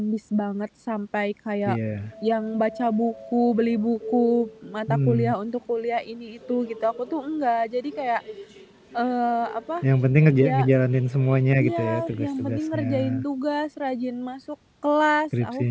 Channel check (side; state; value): both; identical; correlation 1.00